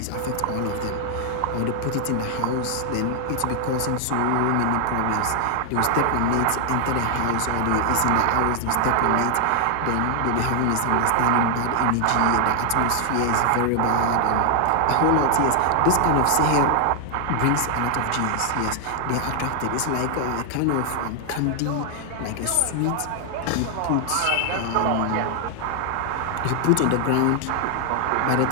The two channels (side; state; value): both; different; correlation 0.00